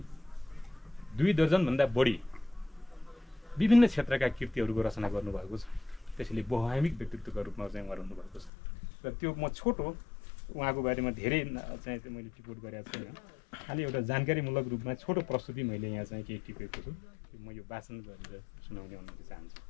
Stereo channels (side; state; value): right; drops out; at 8.5 s